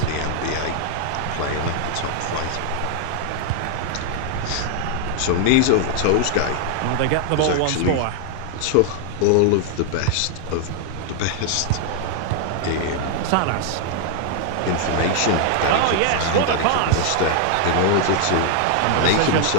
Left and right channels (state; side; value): different; both; correlation 0.00